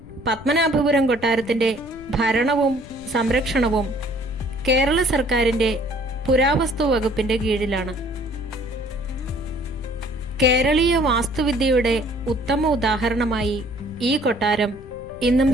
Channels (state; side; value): noise; left; rumble, 17 dB below the sound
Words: പത്മനാഭപുരം കൊട്ടാരത്തിന്റെ ഭരണവും സംരക്ഷണവും കേരള സർക്കാരിന്റെ പുരാവസ്തു വകുപ്പിന്റെ കീഴിലാണ്. കേരളീയ വാസ്തുവിദ്യയുടെ ഉത്തമ ഉദാഹരണമായി ഈ കൊട്ടാരം ഇന്നും